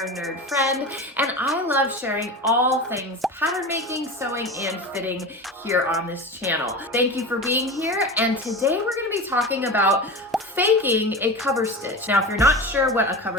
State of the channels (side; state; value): both; normal; correlation 0.28